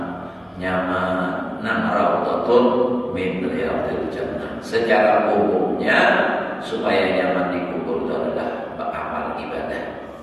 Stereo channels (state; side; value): identical; both; correlation 1.00